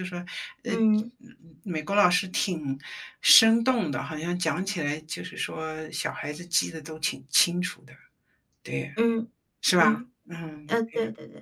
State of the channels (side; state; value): both; identical; correlation 1.00